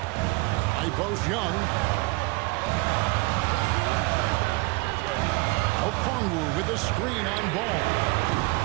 High post Young. Okongwu with a screen on Ball.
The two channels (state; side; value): quieter; left; 25.3 dB